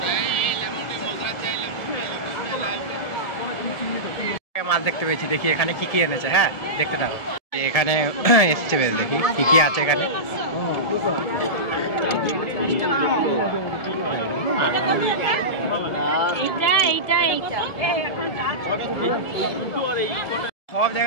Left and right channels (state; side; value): late; right; 1.7 ms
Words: মাছ দেখতে পেয়েছি, দেখি এখানে কি কি এনেছে। হ্যাঁ দেখতে থাকো, এখানে এসছে বেশ, দেখি কি কি আছে এখানে। সব